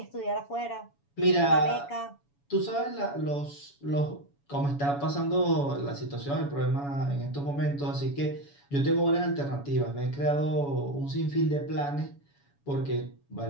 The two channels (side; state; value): right; late; 7.1 ms